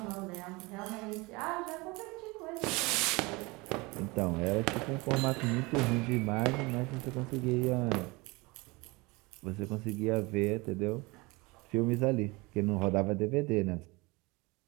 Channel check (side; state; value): left; quieter; 24.6 dB